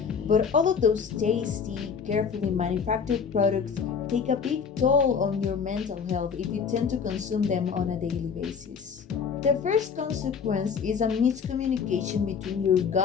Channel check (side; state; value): right; quieter; 6.3 dB